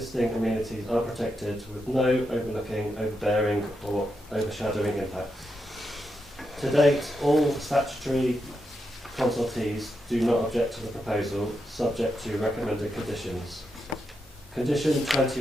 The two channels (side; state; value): both; normal; correlation 0.84